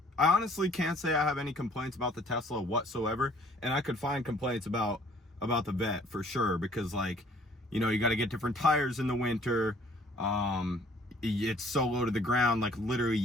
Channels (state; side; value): normal; both; correlation 0.58